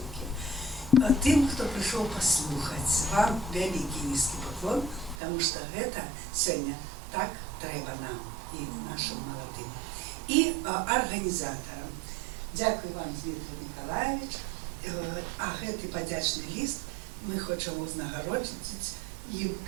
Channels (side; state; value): left; drops out; at 5.2 s